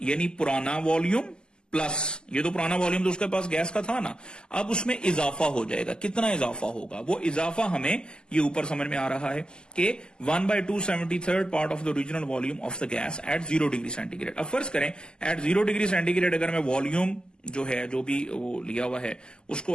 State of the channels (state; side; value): late; right; 0.047 ms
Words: यानी पुराना वॉल्यूम प्लस ये तो पुराना वॉल्यूम तो उसके पास गैस का था ना, अब उसमें इजाफा हो जाएगा, कितना इजाफा होगा, वो इजाफा हमें ये ऊपर समझ में आ रहा है कि 1/273 part of the original volume of the gas at 0 degree centigrade. अब फर्ज करें एट 0 डिग्री सेंटीग्रेड अगर मैं वॉल्यूम जो है, जो भी वो लिया हुआ है, उसको